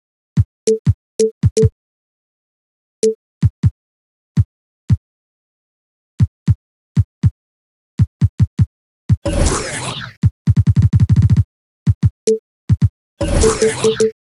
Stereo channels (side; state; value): both; identical; correlation 1.00